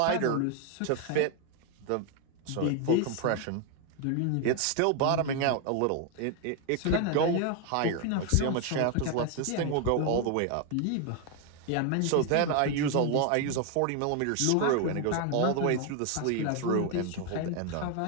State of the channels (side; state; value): both; different; correlation 0.01